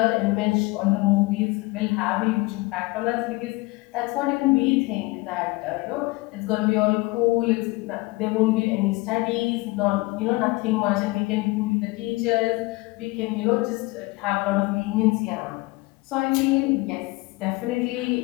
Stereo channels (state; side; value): quieter; right; 22.7 dB